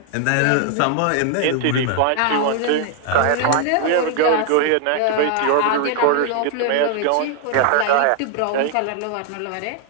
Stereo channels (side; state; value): both; different; correlation 0.00